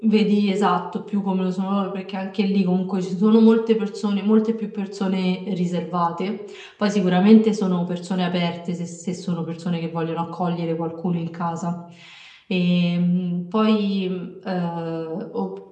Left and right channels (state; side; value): identical; both; correlation 1.00